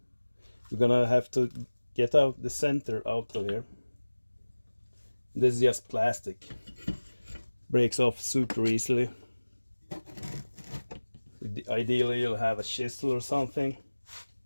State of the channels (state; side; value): inverted; both; correlation -1.00